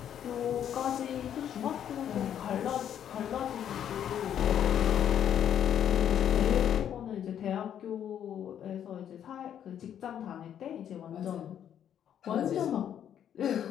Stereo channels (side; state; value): right; quieter; 9.7 dB